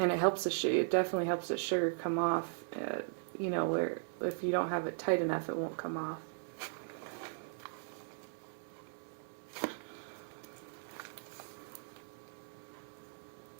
definitely helps the sugar come off. Where if you don't have it tight enough, it won't come off.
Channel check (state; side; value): silent; left; digital silence